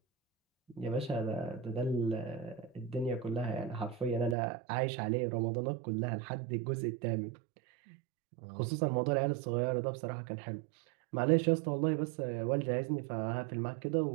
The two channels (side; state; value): left; drops out; at 4.4 s